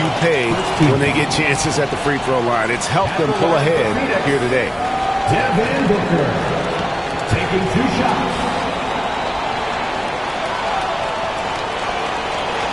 pay when they get chances at the free throw line. It's helped them pull ahead here today. Devin Booker taking 2 shots.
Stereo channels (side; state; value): both; identical; correlation 1.00